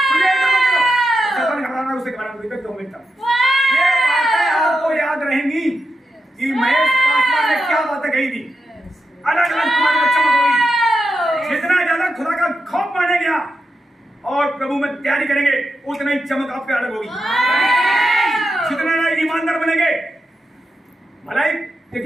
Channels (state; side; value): normal; both; correlation 0.87